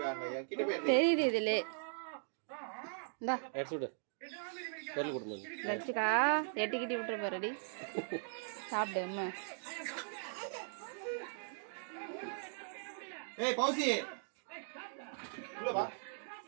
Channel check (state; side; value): silent; left; digital silence